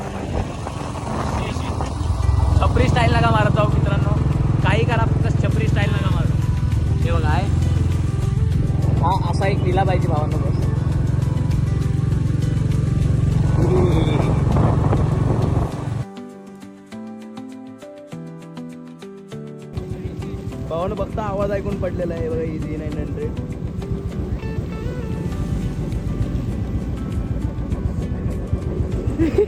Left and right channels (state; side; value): identical; both; correlation 1.00